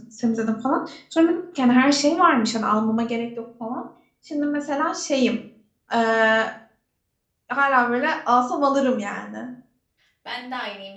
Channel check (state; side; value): identical; both; correlation 1.00